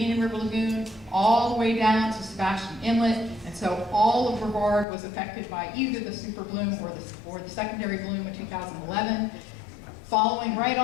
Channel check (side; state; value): right; drops out; at 4.9 s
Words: River Lagoon all the way down to Sebastian Inlet. And so all of Brevard was affected by either the super bloom or the secondary bloom in 2011. Following right